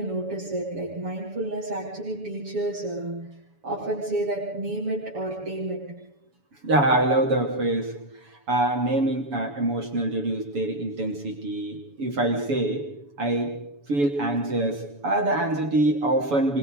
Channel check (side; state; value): left; late; 7.0 ms